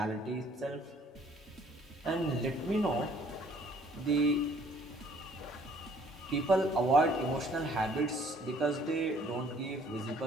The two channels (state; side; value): normal; both; correlation 0.59